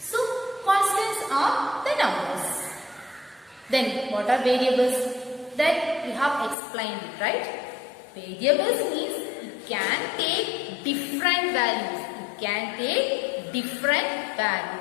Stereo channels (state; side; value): drops out; right; at 6.6 s